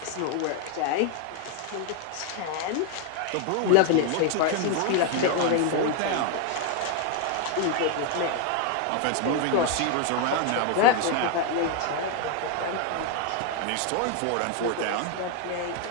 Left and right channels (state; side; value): different; both; correlation 0.01